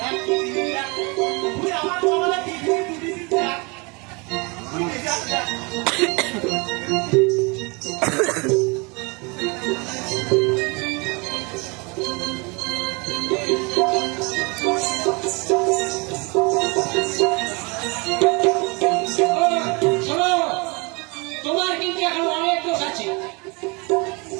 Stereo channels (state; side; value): quieter; left; 29.2 dB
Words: তুই আমার বাবারা টিভি দুটি দেখ। তুই দেখ দেখ। শোনো, তোমার কিন্তু এখন অনেক দোষ আছে,